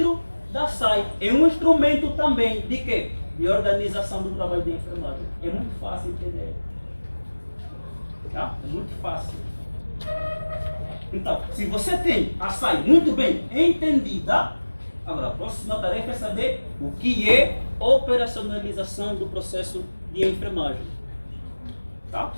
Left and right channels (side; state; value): both; inverted; correlation -1.00